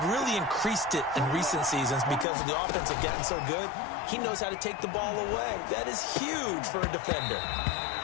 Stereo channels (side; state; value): right; drops out; at 2.2 s